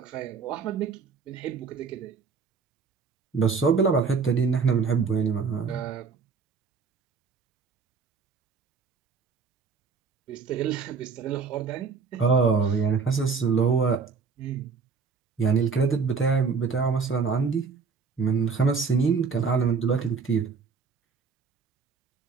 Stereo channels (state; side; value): quieter; left; 5.3 dB